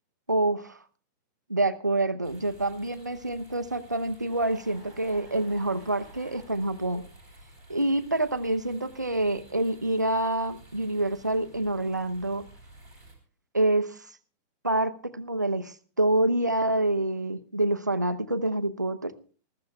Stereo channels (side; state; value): both; inverted; correlation -0.71